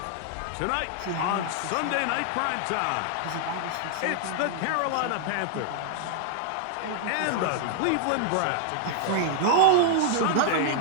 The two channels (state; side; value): different; both; correlation -0.01